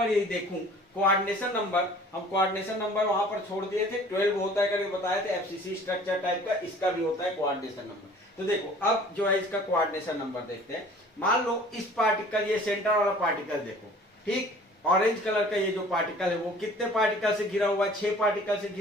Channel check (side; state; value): both; normal; correlation 0.49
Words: यदि देखूं, कोऑर्डिनेशन नंबर, हम कोऑर्डिनेशन नंबर वहां पर छोड़ दिए थे, 12 होता है करके बताए थे एफसीसी स्ट्रक्चर टाइप का, इसका भी होता है कोऑर्डिनेशन नंबर। तो देखो अब जो है इसका कोऑर्डिनेशन नंबर देखते हैं। मान लो इस पार्टिकल, ये सेंटर वाला पार्टिकल देखो, ठीक, ऑरेंज कलर का ये जो पार्टिकल है वो कितने पार्टिकल से घिरा हुआ है, 6 पार्टिकल से